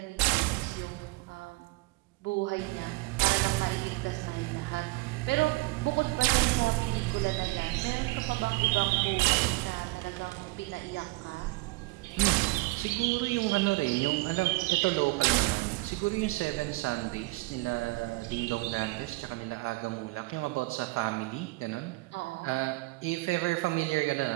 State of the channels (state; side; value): quieter; left; 23.5 dB